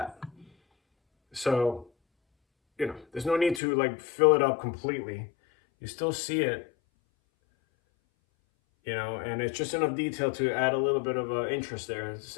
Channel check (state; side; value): drops out; right; at 3.6 s